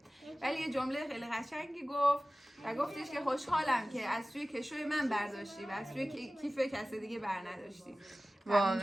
ولی یه جمله خیلی قشنگی گفت و گفتش که خوشحالم که از توی کشوی من برداشتی و از توی کیف کسی دیگه بر نداشتی.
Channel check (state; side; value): normal; both; correlation 0.97